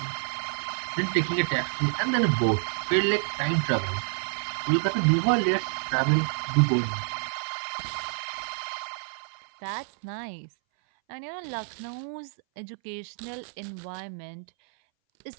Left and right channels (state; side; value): silent; left; 59 dB below the other